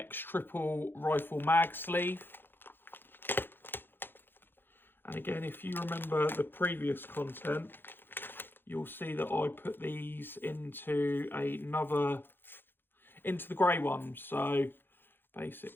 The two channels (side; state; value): right; late; 0.10 ms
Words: triple rifle mag sleeve. And again, if you remember the previous content, you'll see that I put these into into the grey one. So